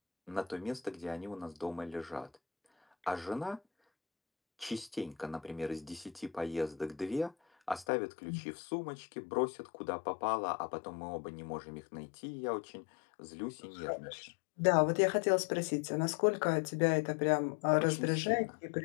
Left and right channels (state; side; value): drops out; right; at 7.9 s